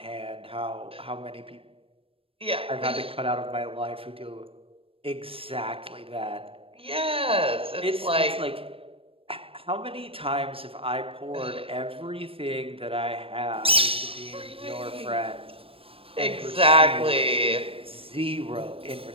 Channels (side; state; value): left; late; 0.27 ms